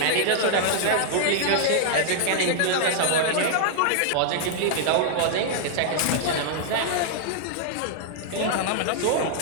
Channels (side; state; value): both; different; correlation -0.01